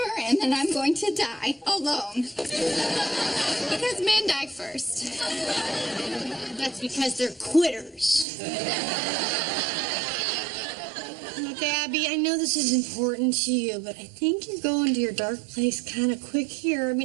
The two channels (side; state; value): left; drops out; at 8.2 s